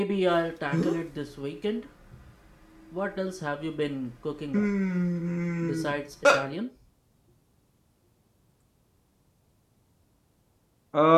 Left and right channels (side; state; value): both; identical; correlation 1.00